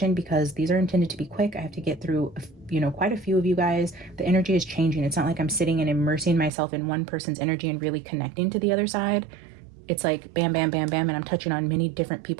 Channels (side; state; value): left; drops out; at 6.5 s